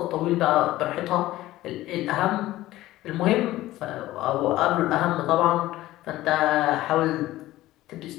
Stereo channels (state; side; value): quieter; right; 16.1 dB